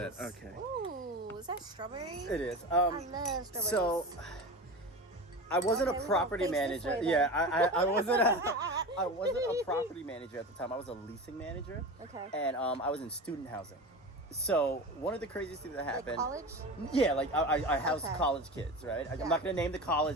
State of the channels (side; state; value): both; normal; correlation 0.29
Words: Please. Okay. Ooh, is that strawberry? It is. I love strawberries. So I wasn't Okay, a we gonna property face this manager. way, then. Yeah, I wasn't I wasn't a property manager at the time. I was a leasing manager. Okay. And I was in student housing. So one of the craziest things that Like happened. college? Yeah, like I housed Okay. college kids, right? Yeah. I'm not gonna name the